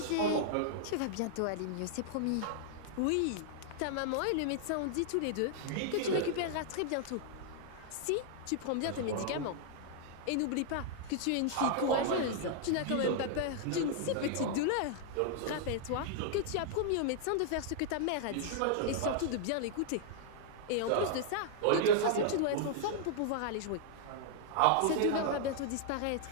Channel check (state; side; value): different; both; correlation -0.01